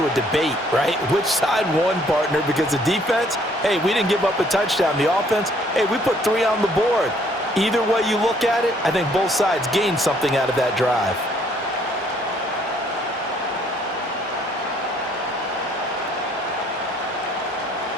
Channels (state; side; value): normal; both; correlation 0.63